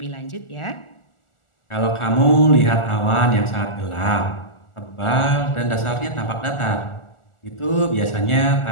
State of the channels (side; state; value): right; late; 1.4 ms